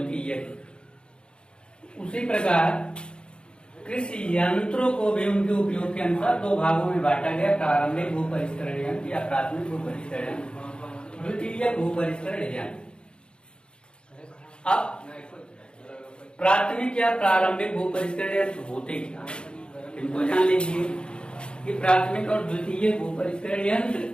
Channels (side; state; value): right; late; 0.052 ms